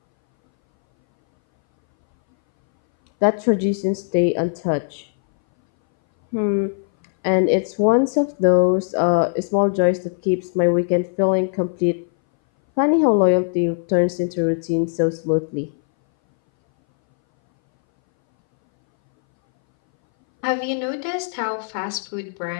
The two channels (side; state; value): right; silent; 61 dB below the other